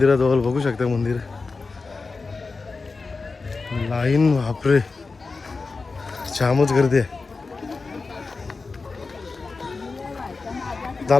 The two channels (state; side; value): quieter; right; 4.1 dB